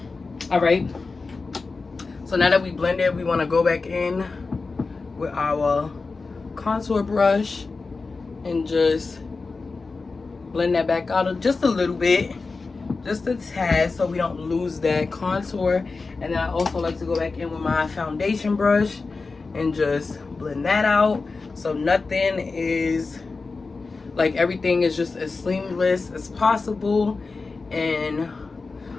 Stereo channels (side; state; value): right; quieter; 4.1 dB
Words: All right. So now that we blended, we want to go back in with our contour brush and just blend that back out just a little bit, just a tad, so we don't lose that contour. And then I also like to go back in with my foundation brush and just blend that out, so nothing is, like, everything is just as seamless as possible, and